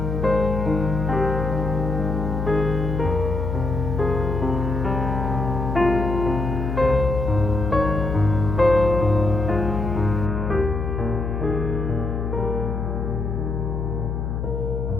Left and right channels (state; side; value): noise; left; hum, 2 dB below the sound